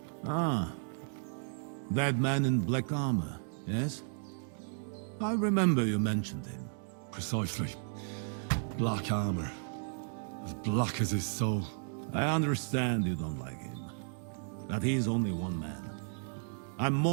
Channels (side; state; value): left; silent; digital silence